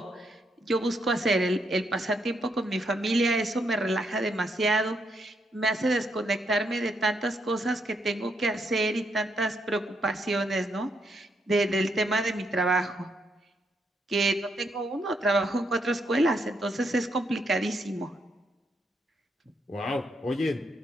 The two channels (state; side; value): normal; both; correlation 0.77